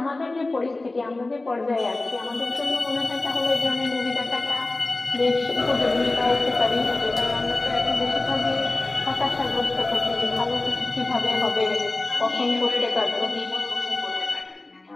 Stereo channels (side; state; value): right; quieter; 3.0 dB